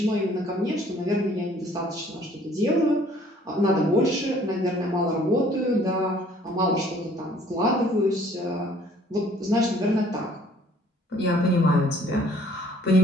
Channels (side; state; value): both; normal; correlation 0.57